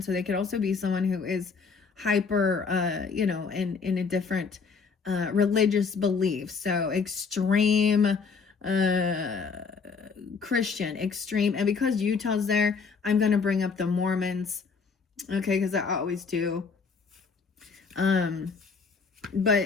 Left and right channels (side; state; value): right; quieter; 5.2 dB